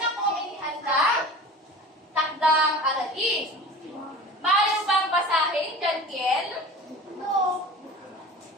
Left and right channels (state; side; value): normal; both; correlation 0.38